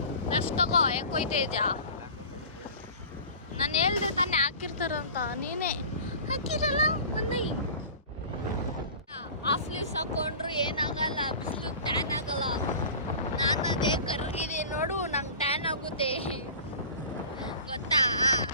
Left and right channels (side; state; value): both; inverted; correlation -0.39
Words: ಲೆಫ್ಟ್ ತಗೋ, ಯಾಕೋಯ್ತೇಜ ನಾನು ಹೇಳ್ದೆ ತಾನೇ ಹಾಕಿರ್ತಾರಂತ, ನೀನೇ ಹಾಕಿರಲ್ಲ. ಮೊನ್ನೆ ಹಾಫ್ ಸ್ಲೀವ್ಸ್ ಹಾಕೊಂಡ್ರು ಏನಾಗಲ್ಲ, ಬಿಸಿಲು ಟ್ಯಾನ್ ಆಗಲ್ಲ. ನಾನು ಅದೇ ಕರ್ಗಿದ್ದೀನಿ ನೋಡು, ನಂಗೆ ಟ್ಯಾನ್ ಆಗುತ್ತೆ ಗೊತ್ತಾ.